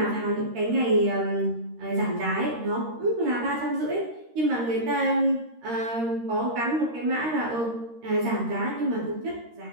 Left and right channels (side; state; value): left; late; 13 ms